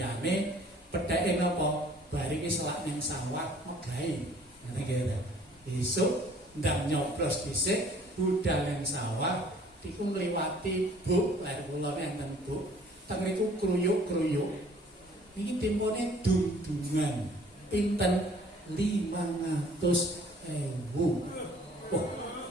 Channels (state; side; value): normal; both; correlation 0.54